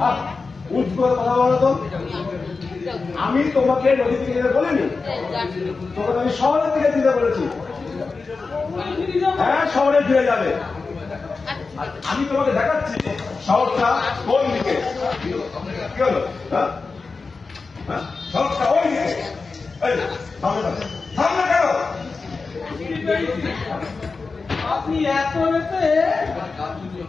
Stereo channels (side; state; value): right; quieter; 4.3 dB